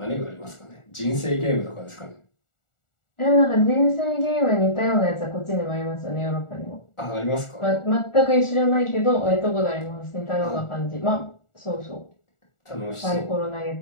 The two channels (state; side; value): late; right; 1.4 ms